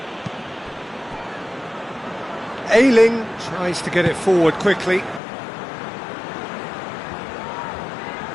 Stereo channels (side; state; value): right; drops out; at 5.2 s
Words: Ayling tries to get it forward quickly.